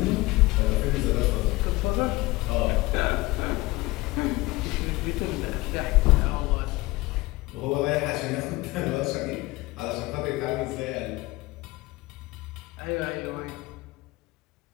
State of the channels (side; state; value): right; quieter; 20.7 dB